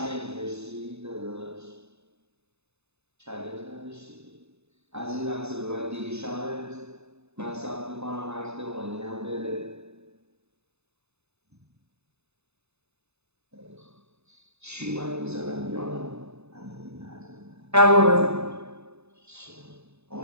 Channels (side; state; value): left; late; 0.80 ms